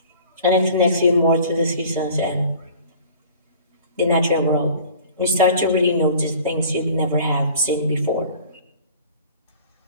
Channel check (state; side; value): inverted; both; correlation -0.46